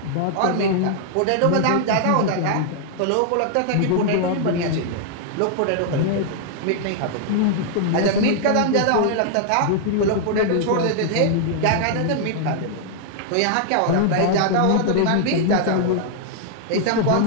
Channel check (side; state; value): both; different; correlation -0.01